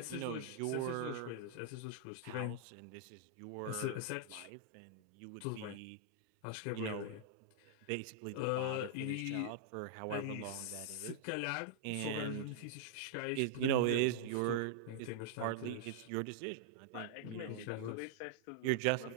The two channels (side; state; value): both; different; correlation -0.01